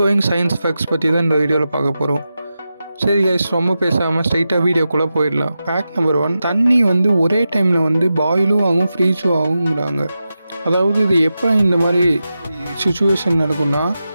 சயின்ஸ் ஃபேக்ட்ஸ் பற்றி தான் இந்த வீடியோவில் பார்க்க போகிறோம். சரி கைஸ், ரொம்ப பேசாமல் ஸ்ட்ரைட்டாக வீடியோக்குள்ளே போயிடலாம். ஃபேக்ட் நம்பர் 1, தண்ணி ஒரே டைமில் பாயிலும் ஆகும் ஃப்ரீஸும் ஆகுங்கிறாங்க. அதாவது இது எப்போ இந்த மாதிரி சுச்சுவேஷன் நடக்கும்னா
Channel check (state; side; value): inverted; both; correlation -0.91